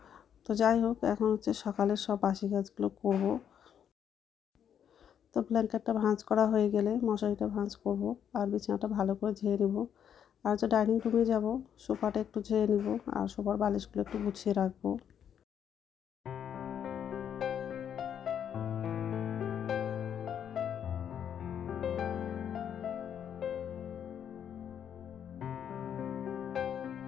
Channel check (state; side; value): quieter; right; 8.8 dB